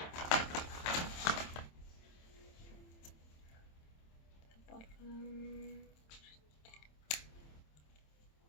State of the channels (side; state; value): right; late; 27 ms